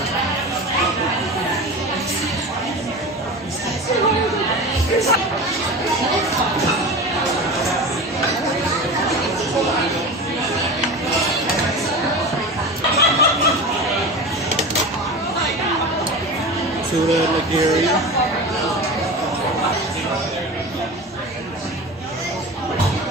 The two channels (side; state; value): both; normal; correlation 0.30